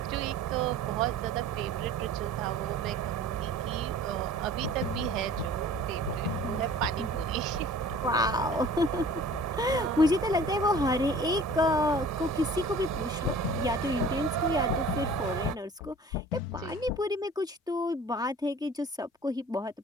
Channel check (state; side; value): normal; both; correlation 0.46